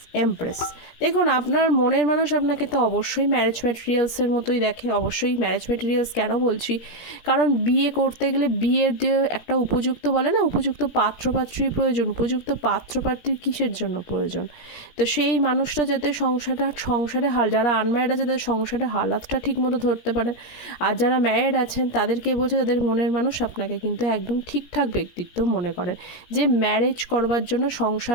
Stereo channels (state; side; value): late; right; 17 ms